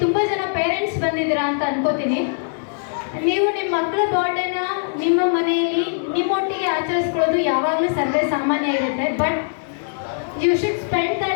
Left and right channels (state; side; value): silent; right; digital silence